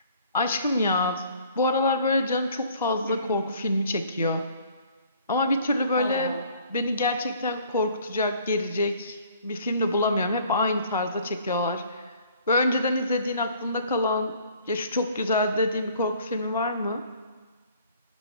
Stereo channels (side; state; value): both; inverted; correlation -0.56